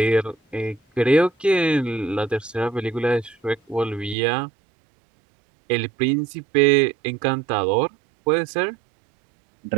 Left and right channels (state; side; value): drops out; left; at 4.2 s